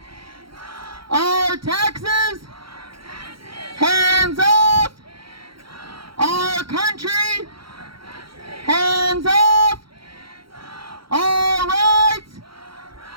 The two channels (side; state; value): left; late; 0.74 ms